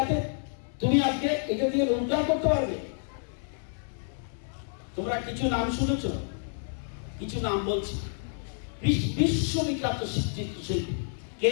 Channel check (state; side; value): silent; right; 58 dB below the other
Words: তুমি আজকে এটা দিয়ে রোজগার করতে পারবে। তোমরা কিছু নাম শুনেছ, কিছু নাম বলছি। বিশ্ববিখ্যাত চিত্রশিল্পী